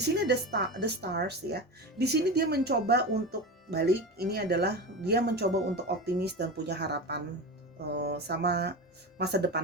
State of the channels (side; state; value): both; normal; correlation 0.24